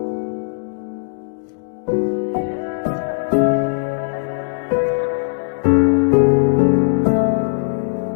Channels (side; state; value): right; silent; digital silence